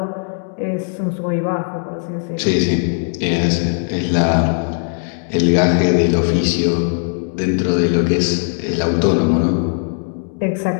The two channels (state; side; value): silent; right; 64 dB below the other